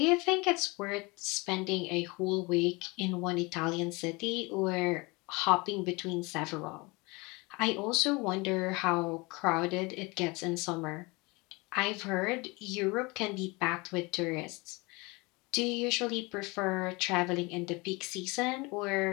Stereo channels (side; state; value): right; quieter; 25.8 dB